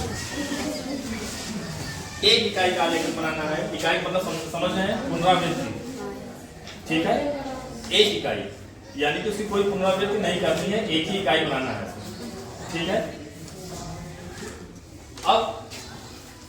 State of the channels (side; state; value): both; identical; correlation 1.00